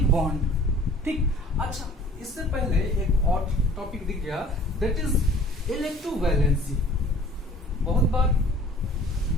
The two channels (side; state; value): both; normal; correlation 0.49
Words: बॉन्ड। ठीक, अच्छा, इससे पहले एक और टॉपिक दिख गया, दैट इज इलेक्ट्रोवैलेंसी। बहुत बार